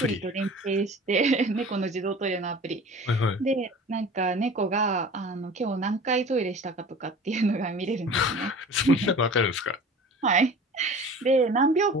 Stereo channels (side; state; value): both; normal; correlation 0.41